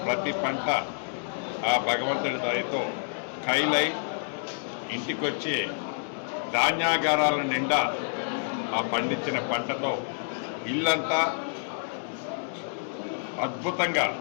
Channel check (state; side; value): silent; right; digital silence